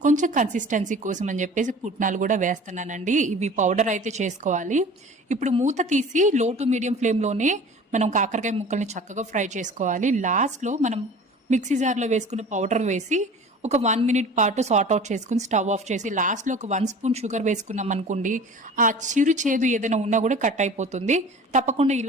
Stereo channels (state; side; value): normal; both; correlation 0.42